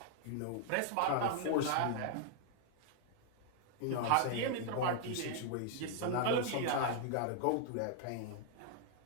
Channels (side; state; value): both; different; correlation -0.01